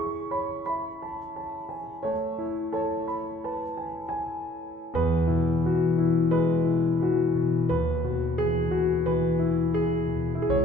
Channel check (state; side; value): normal; both; correlation 0.58